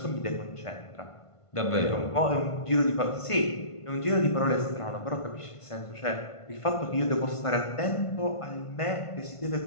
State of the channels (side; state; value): right; late; 1.5 ms